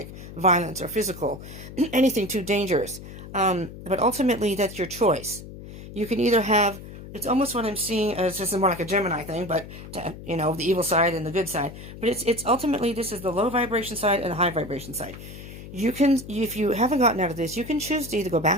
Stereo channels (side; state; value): left; noise; hum, 13 dB below the sound